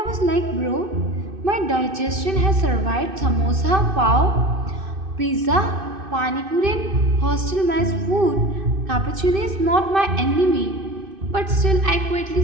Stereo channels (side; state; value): left; late; 2.6 ms